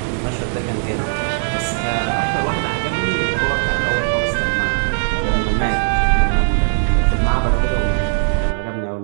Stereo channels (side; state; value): left; silent; digital silence